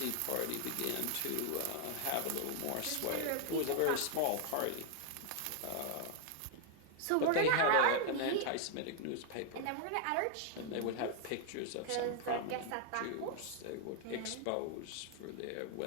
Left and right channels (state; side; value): different; both; correlation 0.00